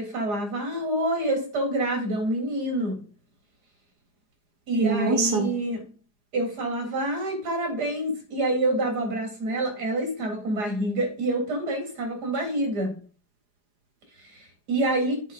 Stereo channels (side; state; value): left; late; 4.9 ms